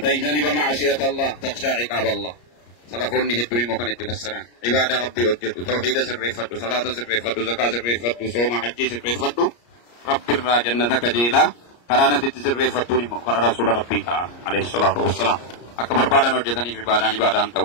معصية الله تخشى عقاب الله سلفوني هدوني مكان التفسران عبادة ربي وجد توحيد سرفت صلاة سرفت زكاة سرفت صوم حج سرفت رب الراجنة كجيلا قرانة تسرفتوني مكان رسول ربي تعالى عليه الصلاة والسلام أكبر بعدا وجدني في بعدان بعدان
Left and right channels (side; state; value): right; late; 34 ms